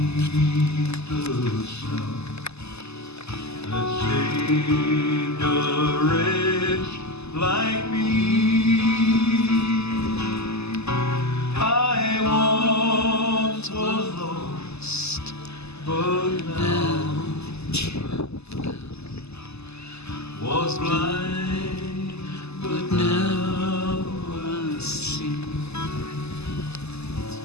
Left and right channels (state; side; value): late; right; 0.79 ms